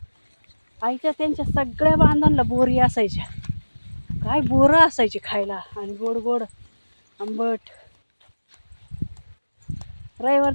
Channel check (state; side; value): inverted; both; correlation -1.00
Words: आईच्या त्यांच्या सगळ्या बांधांना बोरी असायच्या. काय बोरं असायची खायला आणि गोड गोड आंबट.